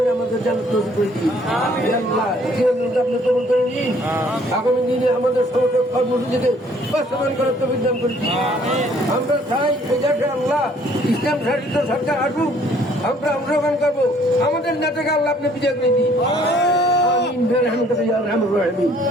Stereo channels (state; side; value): normal; both; correlation 0.60